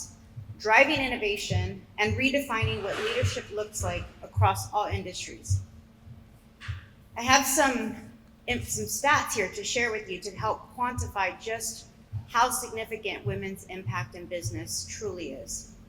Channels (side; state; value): both; identical; correlation 1.00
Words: driving innovation, and redefining what leadership looks like across all industries. I have some stats here to share with you to help quantify just how significant women's impact in business truly is.